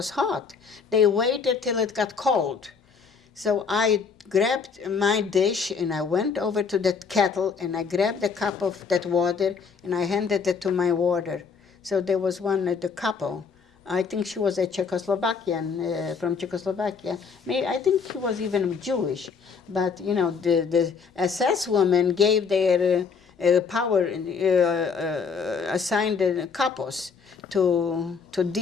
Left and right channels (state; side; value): quieter; right; 5.6 dB